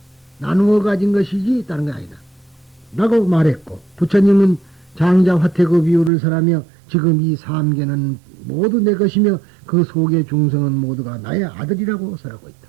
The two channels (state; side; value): drops out; left; at 6.1 s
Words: 나누어 가진 것이지 다른 건 아니다 라고 말했고, 부처님은 장자 화태그 비유를 설하며 지금 이 삼계는 모두 내 것이며 그 속의 중성은 모두가 나의 아들이라고 설하고 있다.